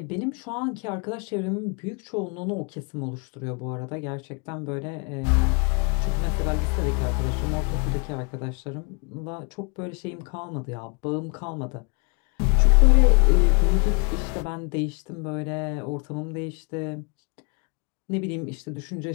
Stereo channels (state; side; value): quieter; right; 35.2 dB